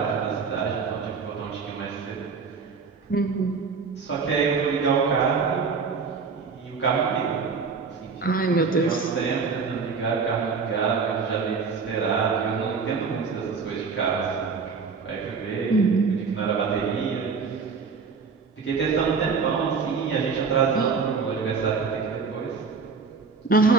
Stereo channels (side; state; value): left; quieter; 5.1 dB